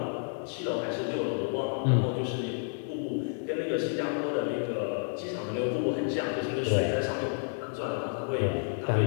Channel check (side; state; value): right; silent; 58 dB below the other